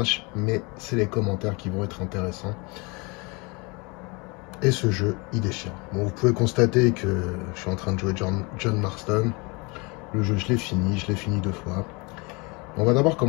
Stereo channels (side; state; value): right; quieter; 28.1 dB